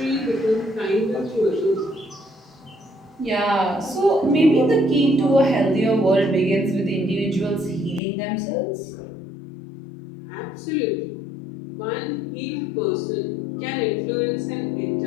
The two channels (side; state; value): right; drops out; at 8.0 s